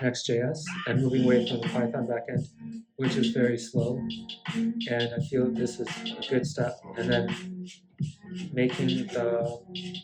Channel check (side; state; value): both; identical; correlation 1.00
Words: and moving away from the Python backend, which is very slow. And I feel this is a good step. And then making